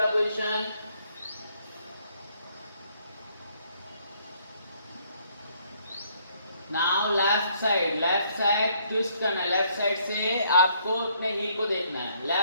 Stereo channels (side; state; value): both; inverted; correlation -0.67